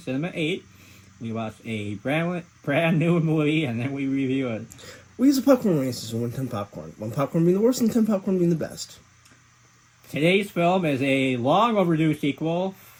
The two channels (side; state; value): both; identical; correlation 1.00